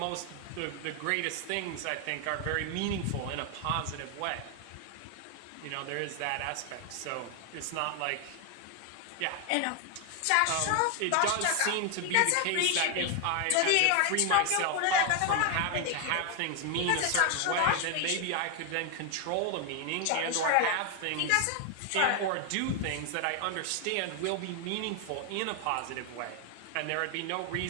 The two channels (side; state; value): both; different; correlation 0.00